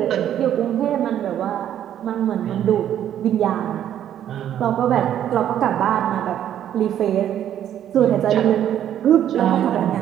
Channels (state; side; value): quieter; left; 10.6 dB